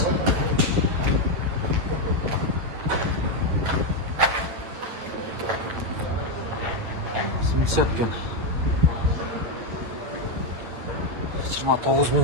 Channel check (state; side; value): late; left; 9.1 ms